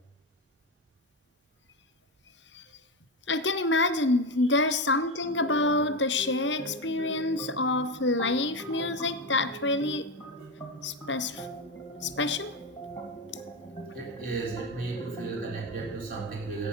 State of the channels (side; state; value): both; normal; correlation 0.15